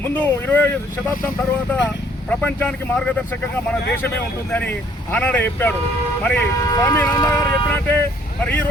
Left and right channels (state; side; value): normal; both; correlation 0.62